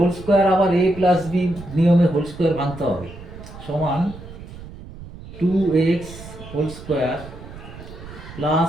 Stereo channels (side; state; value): right; noise; rumble, 15 dB below the sound